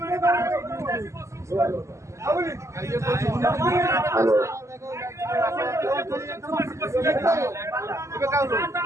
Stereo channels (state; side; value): late; left; 0.14 ms